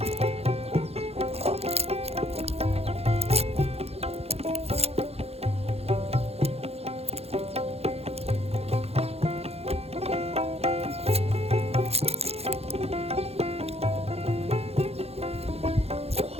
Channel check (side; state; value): left; late; 0.29 ms